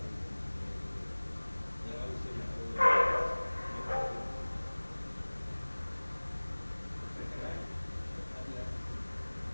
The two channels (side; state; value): both; inverted; correlation -1.00